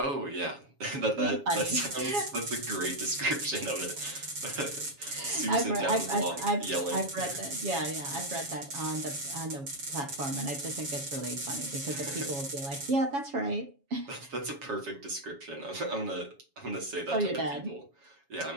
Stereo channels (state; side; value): late; left; 7.2 ms